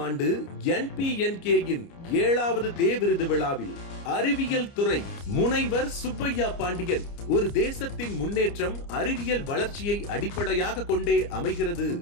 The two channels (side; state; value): right; late; 29 ms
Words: ஆண்டு NPNK-யின் 7வது தே விருது விழாவில் அறிவியல் துறை முனைவர் சுப்பையா பாண்டியன், ஒரு தேசத்தின் முன்னேற்றம் அறிவியல் வளர்ச்சியை அடிப்படையாக கொண்டே அமைகிறது.